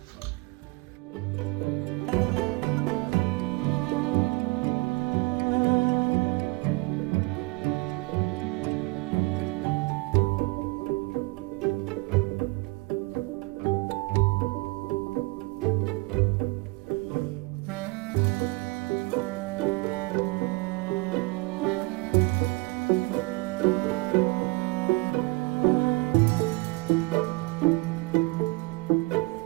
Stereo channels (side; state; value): left; quieter; 25.6 dB